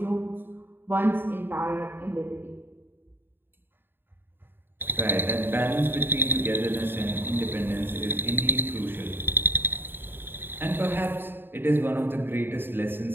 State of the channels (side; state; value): left; late; 0.099 ms